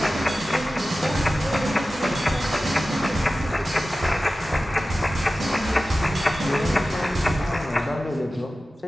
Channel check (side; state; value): both; normal; correlation 0.95